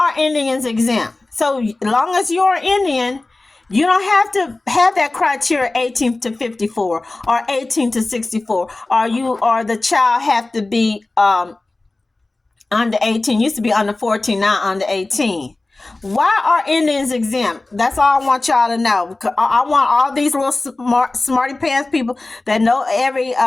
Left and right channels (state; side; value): quieter; right; 3.1 dB